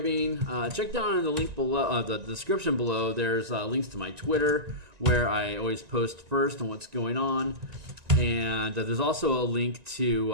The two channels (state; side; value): late; left; 1.9 ms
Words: check down in the link below, the description below. There's links to my Twitter where I always post first on what's going on. And there's also a link to